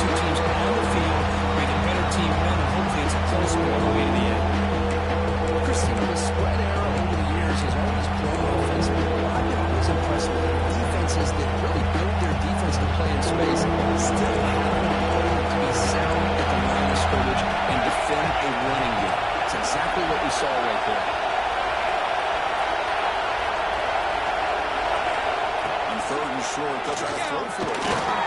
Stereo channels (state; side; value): identical; both; correlation 1.00